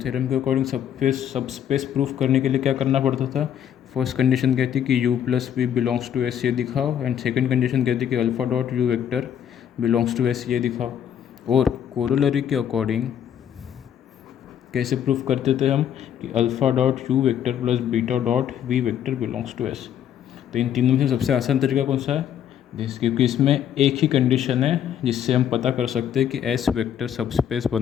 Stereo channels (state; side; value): quieter; right; 9.6 dB